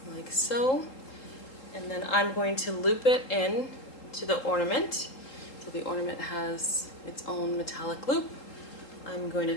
like so. And then I'm going to loop it in to the ornament So the ornament has its own metallic loop. I'm going to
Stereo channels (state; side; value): late; right; 3.8 ms